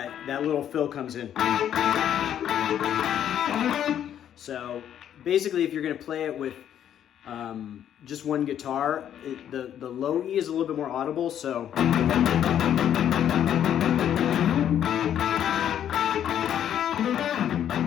little fill comes in. So basically, if you're going to play it with just one guitar, the low E is a little bit more audible, so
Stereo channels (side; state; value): right; quieter; 10.1 dB